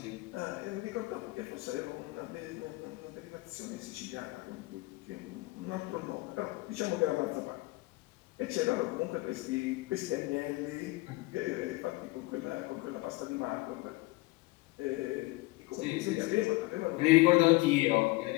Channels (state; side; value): quieter; right; 21.6 dB